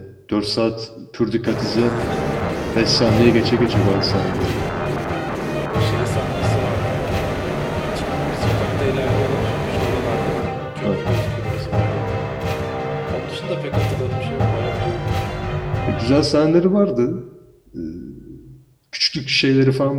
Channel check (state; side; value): identical; both; correlation 1.00